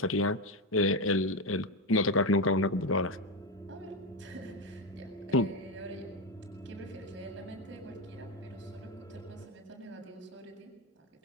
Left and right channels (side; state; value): both; normal; correlation 0.11